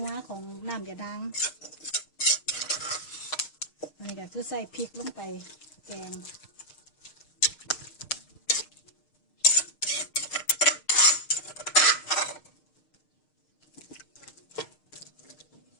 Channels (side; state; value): right; late; 6.5 ms